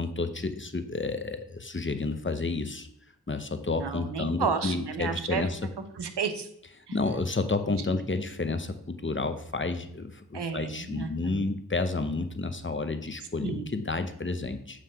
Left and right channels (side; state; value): both; normal; correlation 0.45